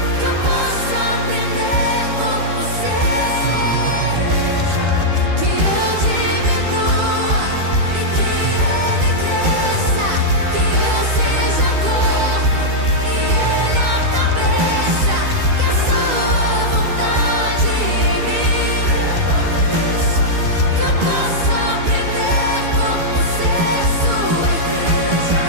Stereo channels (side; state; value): left; late; 12 ms